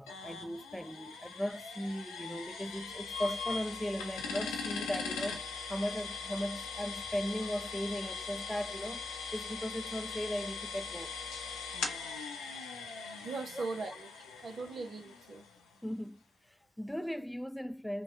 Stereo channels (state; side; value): normal; both; correlation 0.86